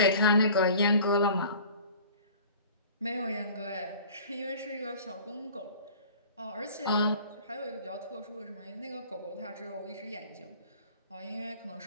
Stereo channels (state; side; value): inverted; both; correlation -0.46